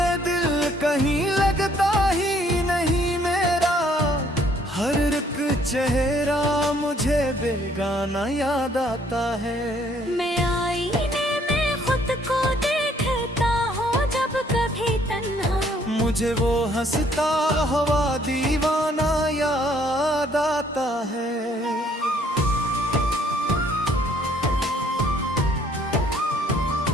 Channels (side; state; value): both; normal; correlation 0.64